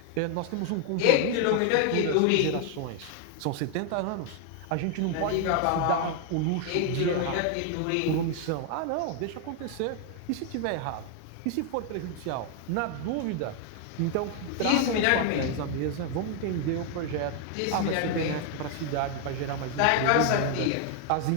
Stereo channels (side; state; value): both; different; correlation 0.00